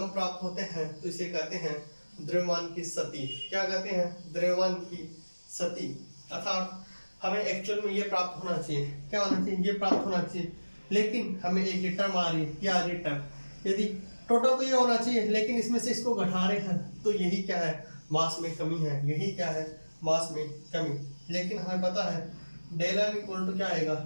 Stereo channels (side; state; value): both; inverted; correlation -1.00